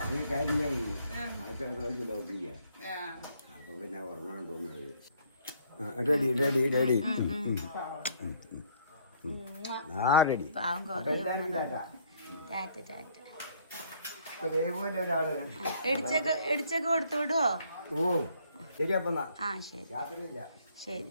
റെഡി റെഡി റെഡി ഇടിച്ചൊക്കെ കൊടുത്തു വിടുവോ? ഓ ശരി. അപ്പൊ ആ ശരി. യാത്രയില്ല.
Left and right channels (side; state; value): both; inverted; correlation -0.63